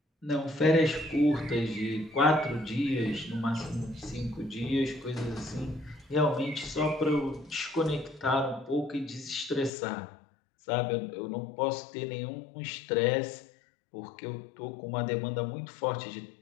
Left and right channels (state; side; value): drops out; right; at 9.7 s